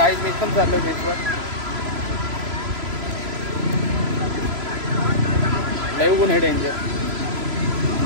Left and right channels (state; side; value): late; left; 3.0 ms